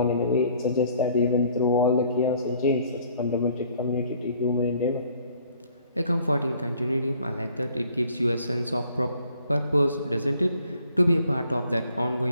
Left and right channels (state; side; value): inverted; both; correlation -0.60